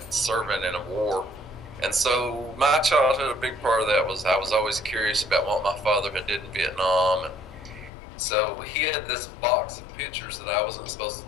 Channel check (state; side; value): drops out; right; at 7.9 s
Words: serving in a war. And so my childhood, a big part of that was I was always curious about what my father had did in Vietnam. And so he had this box of pictures that I wasn't supposed